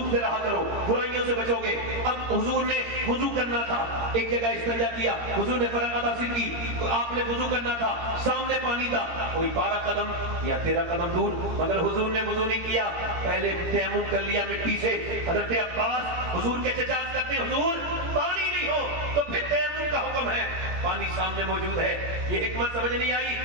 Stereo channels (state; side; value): late; left; 17 ms